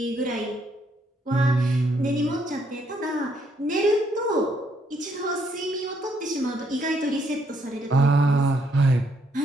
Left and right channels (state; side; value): normal; both; correlation 0.71